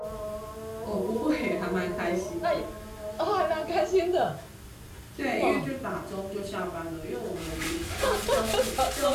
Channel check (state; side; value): identical; both; correlation 1.00